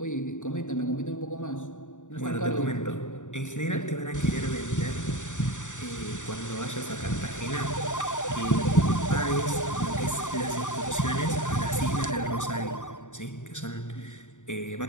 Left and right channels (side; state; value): right; late; 0.86 ms